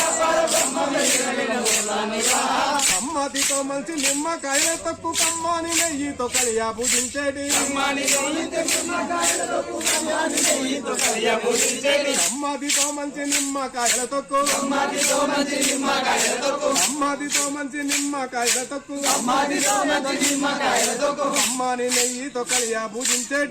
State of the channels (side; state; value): both; identical; correlation 1.00